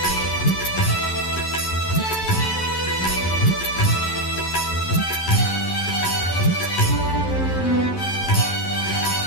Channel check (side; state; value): right; late; 11 ms